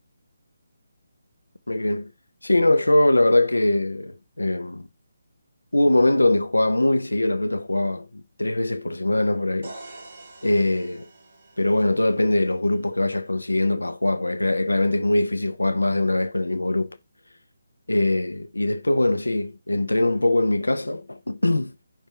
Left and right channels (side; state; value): both; inverted; correlation -0.98